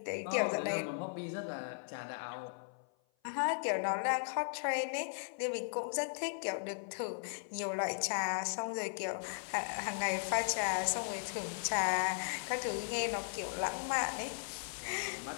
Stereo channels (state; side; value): silent; right; 53 dB below the other